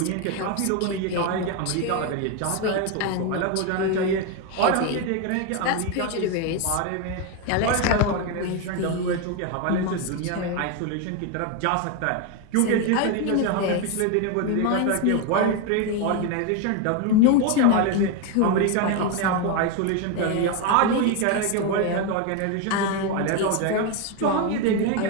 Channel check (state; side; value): different; both; correlation 0.02